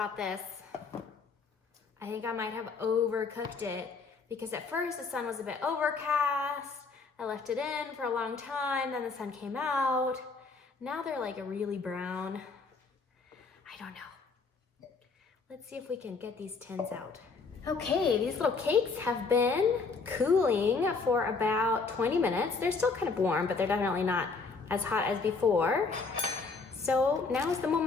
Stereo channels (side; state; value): right; quieter; 4.4 dB